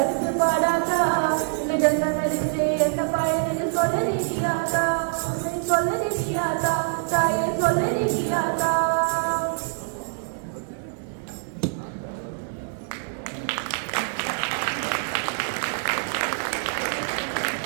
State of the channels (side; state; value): left; silent; digital silence